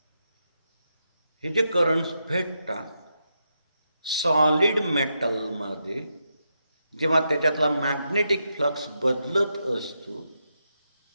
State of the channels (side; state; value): both; inverted; correlation -0.84